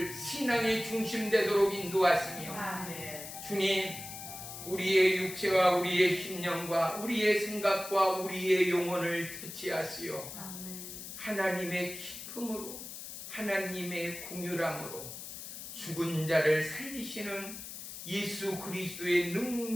신앙의 중심 되도록 인도하시며 아멘. 주님, 우리의 육체와 우리의 심령과 우리의 생각과 우리의 영혼을 터치하시어 아멘. 하나님의 기쁨으로 하나님의 긍휼함으로 죽은 자를 살리시는 예수 그리스도의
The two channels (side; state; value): left; noise; hiss, 10 dB below the sound